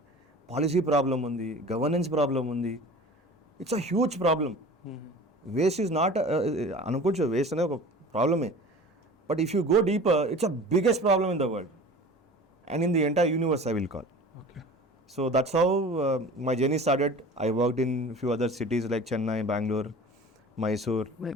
పాలసీ ప్రాబ్లం ఉంది, గవర్నెన్స్ ప్రాబ్లం ఉంది. It's a huge problem. Waste is not అనుకోవచ్చు, వేస్ట్ అనేది ఒక ప్రాబ్లమే, but if you go deeper it's a biggest problem in the world and in the entire universe I will call. So that's how my journey started. I worked in few other cities like Chennai, Bangalore, Mysore,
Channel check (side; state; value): both; normal; correlation 0.40